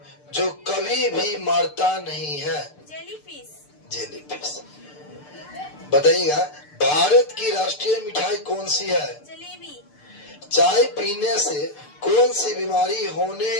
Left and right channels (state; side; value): late; right; 6.7 ms